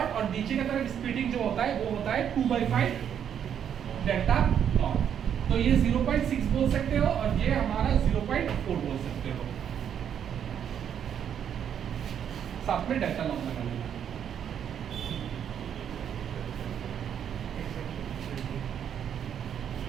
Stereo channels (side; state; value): left; quieter; 8.8 dB